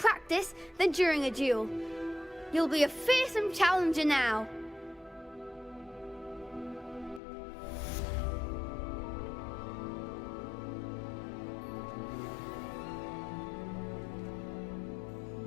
than during a duel. You'll be a fearsome challenger now.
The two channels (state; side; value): drops out; right; at 7.2 s